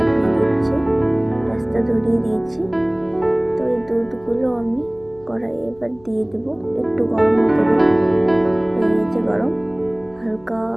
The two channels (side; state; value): left; noise; hum, 28 dB below the sound